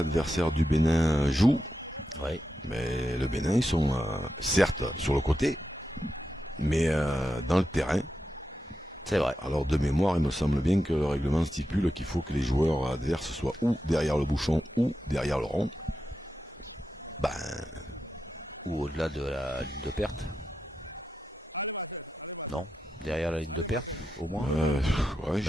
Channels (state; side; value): normal; both; correlation 0.88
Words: du Bénin jouent, Ouais. mais le Bénin, ils sont certes sur le côté, mais dans le terrain. C'est vrai. Alors de mémoire, il me semble bien que le règlement stipule qu'il faut que les joueurs adverses soient ou derrière le bouchon ou derrière le rond. Ben, Ou au-delà de la ligne de perte. Non, derrière la ligne de perte, au moins. ouais,